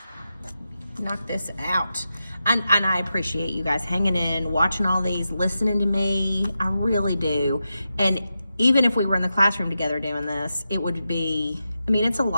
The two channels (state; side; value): inverted; both; correlation -0.89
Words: knock this out. And I appreciate you guys hanging in, watching all these, listening to me. I really do. And even if we were in the classroom together doing this, it would be, I mean, it's a